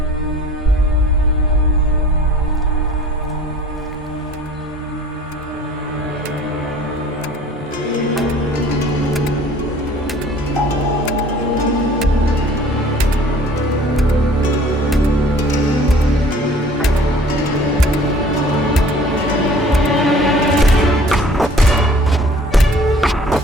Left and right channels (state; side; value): normal; both; correlation 0.50